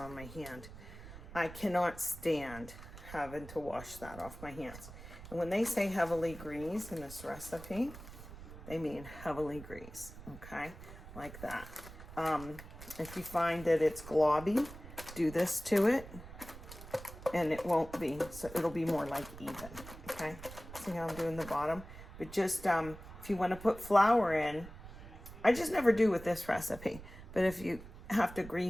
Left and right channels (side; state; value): right; noise; rumble, 14 dB below the sound